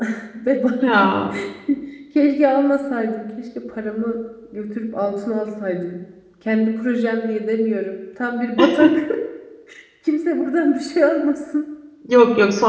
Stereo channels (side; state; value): both; identical; correlation 1.00